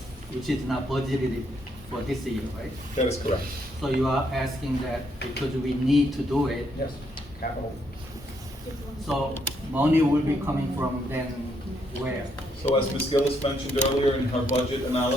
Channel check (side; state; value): both; normal; correlation 0.74